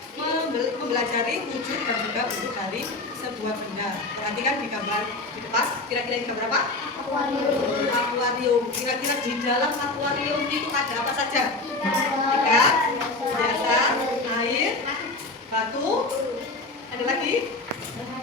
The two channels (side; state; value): right; quieter; 3.2 dB